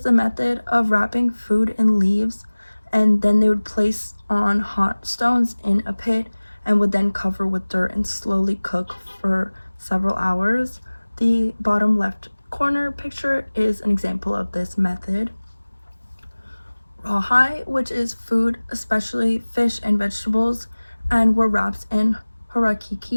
the method of wrapping food in leaves, and then they would place on hot stones in a pit and would then cover with dirt and slowly cook for several hours. The bottom left corner picture is an example of this method. Rawhide, which is food, especially fish and vegetables, and were wrapped in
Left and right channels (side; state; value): both; inverted; correlation -1.00